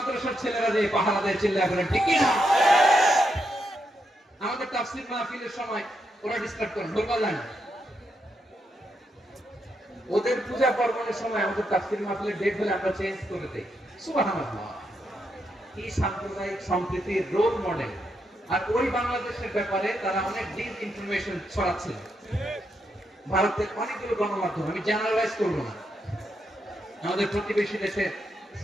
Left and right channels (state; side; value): normal; both; correlation 0.81